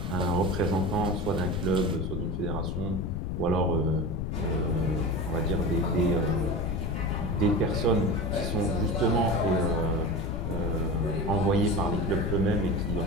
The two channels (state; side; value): noise; left; rumble, 2 dB below the sound